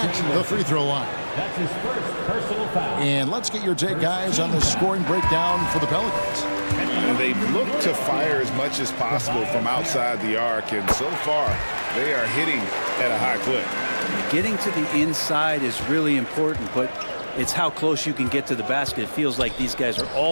the free throw line. That's his first personal foul. And let's get your take, guys, on the scoring breakdown for the Pelicans. They've looked to fire as much as possible from outside the arc, and so far they are hitting at a high clip. Getting to the inside is really important, but it's how close you can get to the basket. It feels like these guys are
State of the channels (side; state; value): both; inverted; correlation -1.00